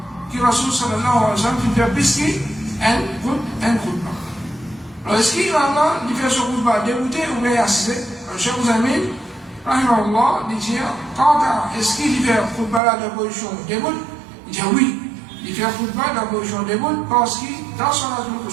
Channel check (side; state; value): left; drops out; at 12.8 s